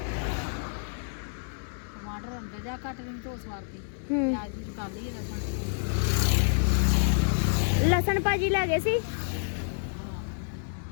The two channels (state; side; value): silent; right; 59 dB below the other